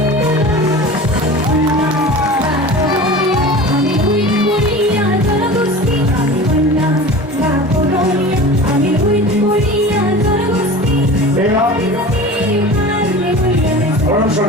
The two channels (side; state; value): both; normal; correlation 0.36